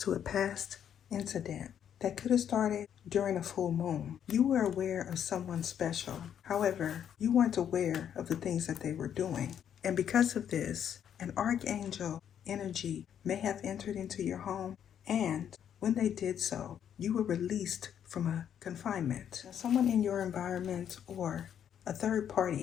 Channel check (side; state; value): right; quieter; 9.2 dB